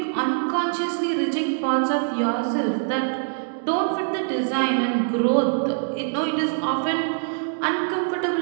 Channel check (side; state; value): left; silent; digital silence